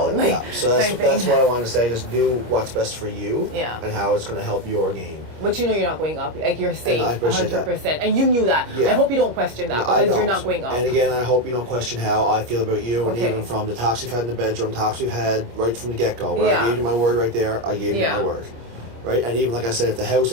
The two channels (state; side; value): late; left; 25 ms